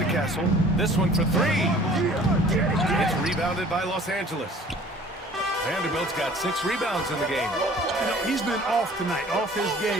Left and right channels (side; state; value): both; normal; correlation 0.50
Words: Castle. This one for 3. It's rebounded by Los Angeles. Vanderbilt's got 6 rebounds in the game. You know, he's been off tonight, off his